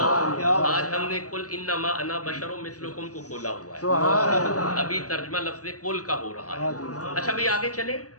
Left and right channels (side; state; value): right; late; 0.67 ms